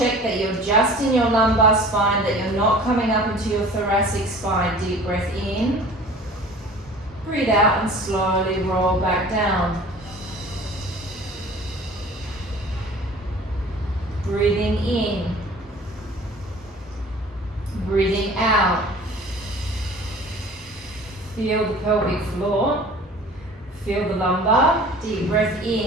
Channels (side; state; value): both; normal; correlation 0.44